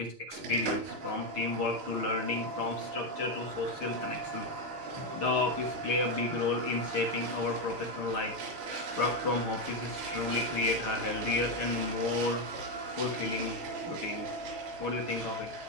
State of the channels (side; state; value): left; late; 6.9 ms